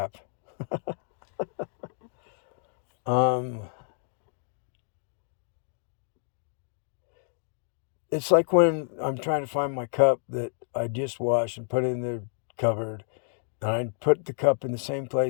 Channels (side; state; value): right; silent; digital silence